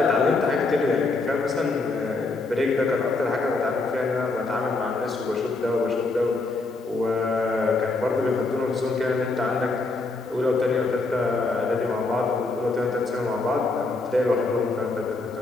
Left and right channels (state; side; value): quieter; right; 3.5 dB